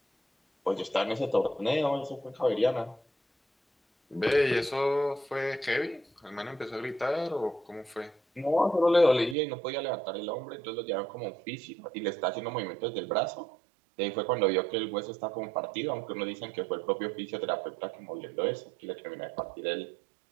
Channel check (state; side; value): drops out; left; at 9.3 s